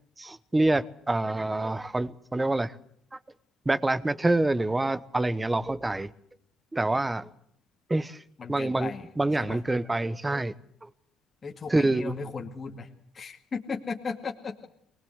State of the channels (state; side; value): normal; both; correlation 0.97